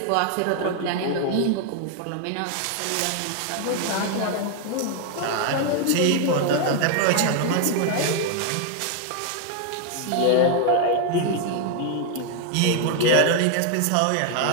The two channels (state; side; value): different; both; correlation 0.00